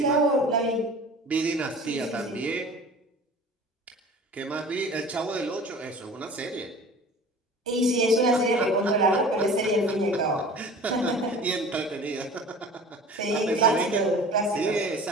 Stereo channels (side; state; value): both; normal; correlation 0.41